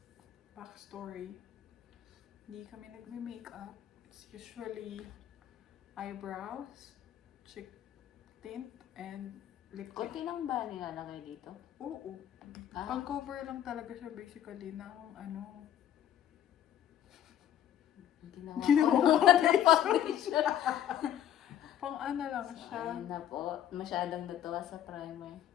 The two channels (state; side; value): quieter; right; 11.0 dB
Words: backstory. Hindi kami nagme-makeup. It's usually eyebrows, cheek tint, and lip tint. Kunti lang ba nilalagay dito? Oo. Ah, Pang-cover lang talaga siya basically ng ano. ginawa Ginawa ko ko ng foundation. Pang ano lang So, siya. ayun na po. Masyadong natuwa sa primer.